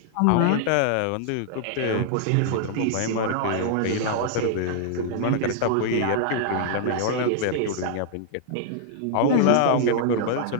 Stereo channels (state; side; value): different; both; correlation -0.01